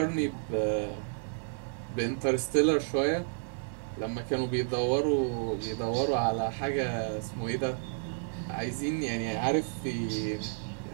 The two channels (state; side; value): silent; left; digital silence